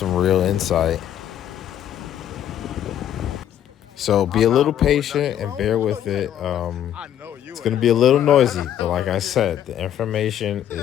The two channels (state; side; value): quieter; right; 10.7 dB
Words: real insight. So be a little patient and bear with it. It's going to be a little noisy, but like I said, the information